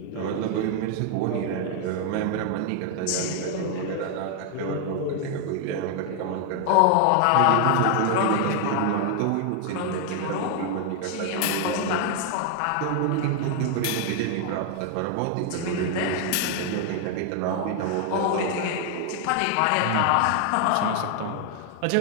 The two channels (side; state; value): both; different; correlation 0.00